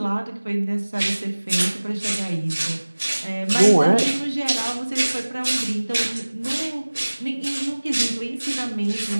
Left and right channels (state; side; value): inverted; both; correlation -1.00